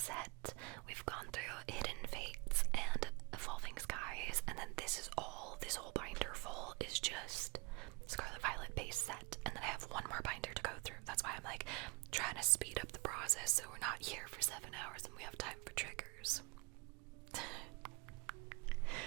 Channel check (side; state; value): left; quieter; 27.6 dB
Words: We've gone through Hidden Fates and Evolving Skies, and then this whole binder full is just Scarlet Violet base set, and then I have one more binder to go through. That's why I'm like trying to speed up the process so we're not here for 7 hours and we have time for triggers.